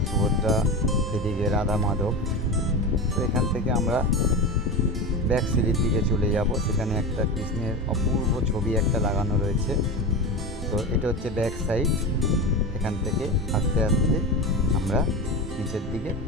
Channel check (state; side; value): normal; both; correlation 0.24